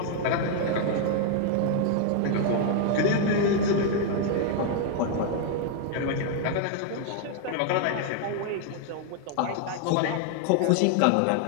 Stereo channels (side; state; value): both; different; correlation 0.00